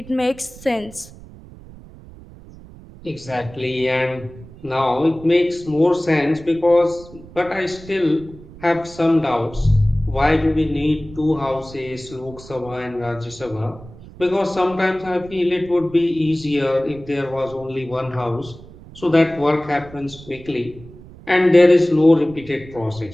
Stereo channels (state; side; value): noise; right; rumble, 19 dB below the sound